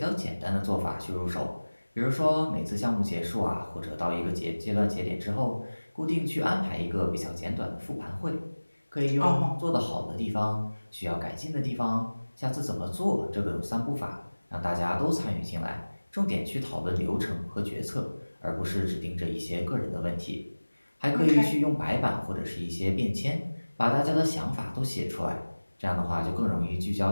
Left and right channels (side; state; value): both; inverted; correlation -1.00